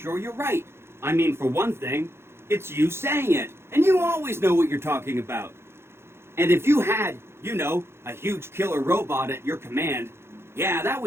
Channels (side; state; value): left; late; 0.12 ms